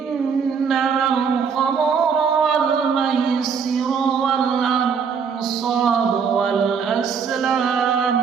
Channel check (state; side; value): quieter; left; 6.3 dB